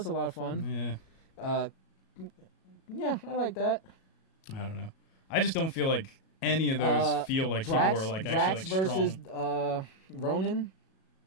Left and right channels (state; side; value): late; right; 37 ms